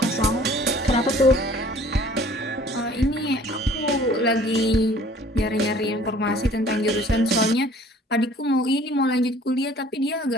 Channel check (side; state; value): both; normal; correlation 0.52